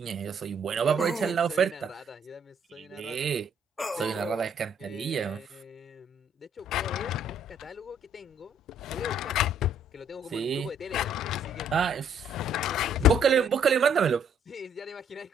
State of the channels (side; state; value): both; normal; correlation 0.65